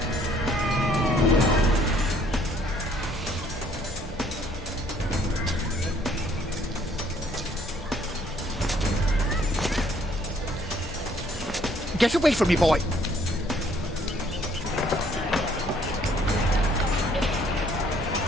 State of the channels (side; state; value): both; normal; correlation 0.63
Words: Get away from me, boy!